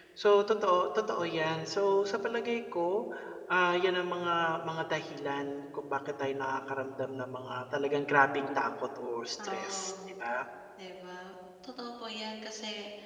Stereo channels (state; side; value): identical; both; correlation 1.00